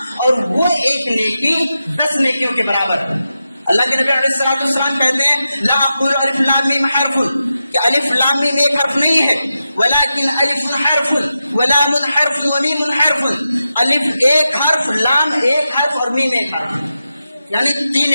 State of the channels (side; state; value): both; inverted; correlation -0.90